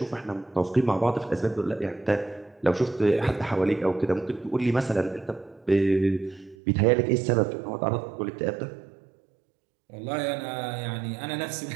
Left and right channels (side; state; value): left; drops out; at 6.6 s